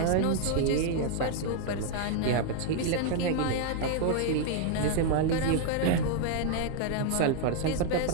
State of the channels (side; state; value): both; different; correlation 0.00